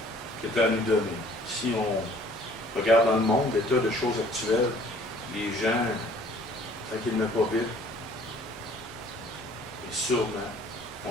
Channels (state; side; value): normal; both; correlation 0.55